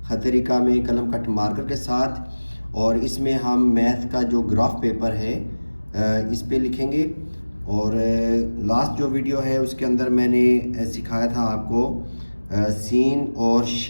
खतरिका में कलम कट मार्कर के साथ, और इसमें हम मैथ का जो ग्राफ पेपर है इस पे लिखेंगे। और लास्ट जो वीडियो है उसके अंदर मैंने सिखाया था आपको सीन और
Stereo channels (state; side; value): inverted; both; correlation -1.00